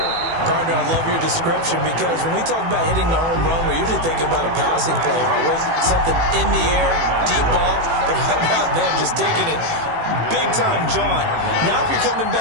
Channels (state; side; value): late; left; 18 ms